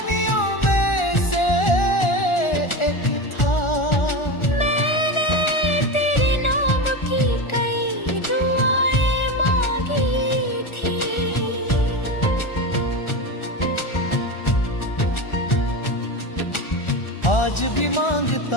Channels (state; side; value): late; right; 1.4 ms